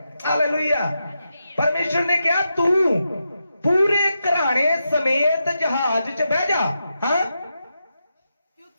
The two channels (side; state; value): both; inverted; correlation -0.86